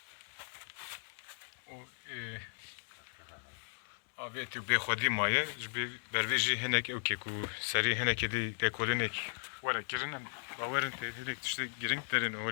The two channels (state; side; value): silent; right; digital silence